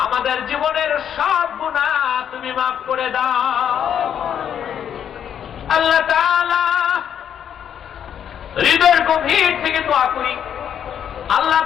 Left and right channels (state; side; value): quieter; right; 9.0 dB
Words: আমাদের জীবনের সব গুনাহ তুমি মাফ করে দাও। আল্লাহ তাআলা, হৃদয়ের গভীর থেকে দোয়া করি, আল্লাহ